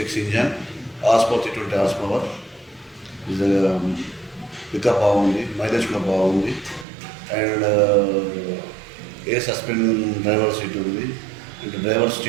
engine, horse power 320 horse power. Pickup బాగుంది. మైలేజ్ కూడా బాగుంది. And air suspend driver seat ఉంది. And driver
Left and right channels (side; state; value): left; drops out; at 6.9 s